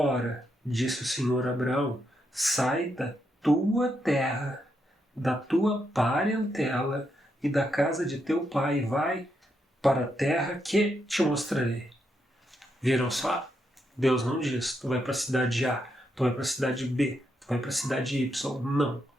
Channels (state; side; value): normal; both; correlation 0.81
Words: disse o Senhor a Abraão: sai da tua terra, da tua parentela e da casa de teu pai, e vai para a terra que te mostrarei. Viram só? Deus não diz: tu vai para a cidade A, tu vai para a cidade B, tu vai para a cidade Y. Não.